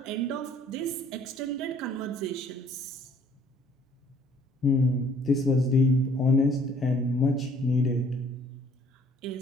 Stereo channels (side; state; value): both; normal; correlation 0.59